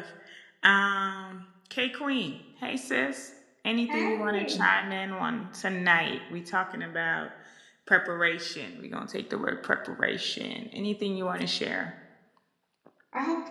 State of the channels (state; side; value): identical; both; correlation 1.00